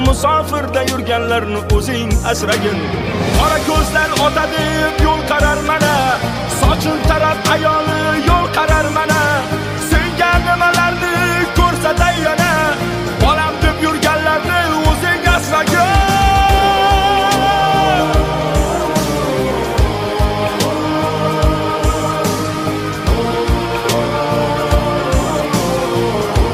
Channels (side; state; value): both; identical; correlation 1.00